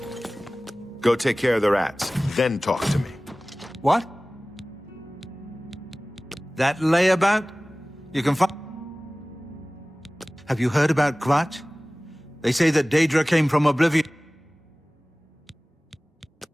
Go take care of the rats, then talk to me. What? That layabout? You can find... Have you heard about Kvatch? They say that Daedra came from Oblivion.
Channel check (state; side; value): normal; both; correlation 0.98